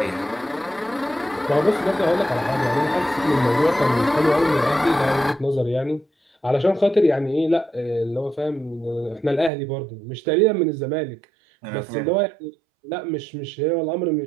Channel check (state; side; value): drops out; left; at 9.5 s